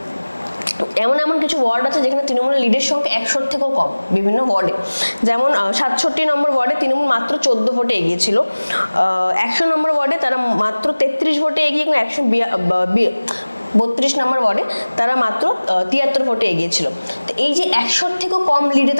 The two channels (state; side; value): inverted; both; correlation -1.00